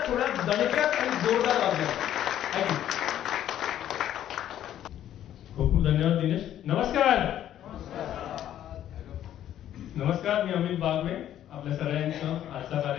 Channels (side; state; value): right; quieter; 11.4 dB